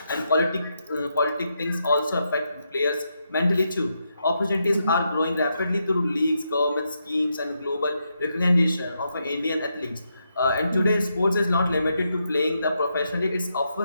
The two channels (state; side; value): inverted; both; correlation -0.82